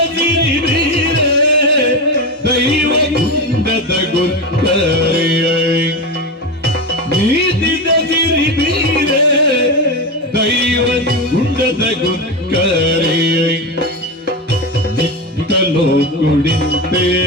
ಸಿರಿಬೀರೇ ದೈವ ಗುಂಡದ ಗುರ್ಕರೇ ನೀತಿದ ಸಿರಿಬೀರೇ ದೈವ ಗುಂಡದ ಗುರ್ಕರೇ ನಿತ್ತಲೋ ಕುಡಿತೆ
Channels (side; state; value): both; normal; correlation 0.18